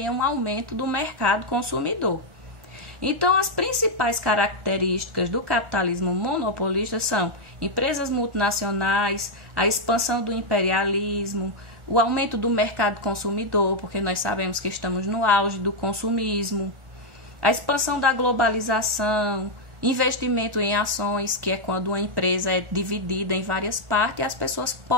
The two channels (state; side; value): late; left; 1.4 ms